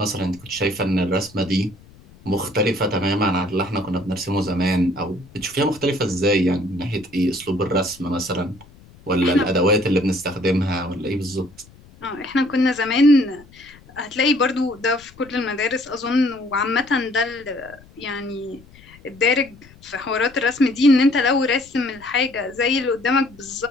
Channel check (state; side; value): noise; left; rumble, 24 dB below the sound